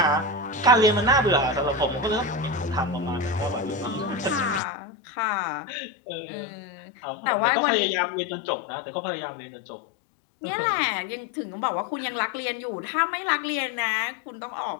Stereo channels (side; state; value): right; drops out; at 4.6 s